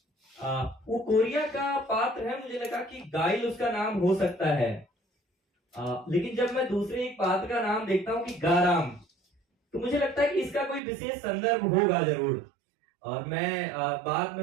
वो कोरिया का पात्र है, मुझे लगा कि गाइल उसका नाम हो सकता है। लेकिन जब मैं दूसरे एक पात्र का नाम देखता हूँ कि गाराम, तो मुझे लगता है कि इसका कोई विशेष संदर्भ होगा जरूर। और मैं बाद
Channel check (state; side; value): drops out; left; at 10.8 s